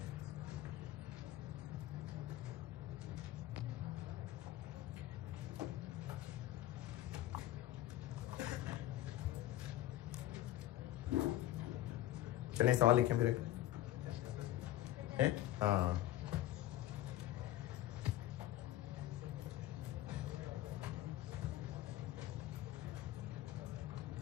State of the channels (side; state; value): right; quieter; 14.4 dB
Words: चलें सवाल लिखें फिर एक है। हाँ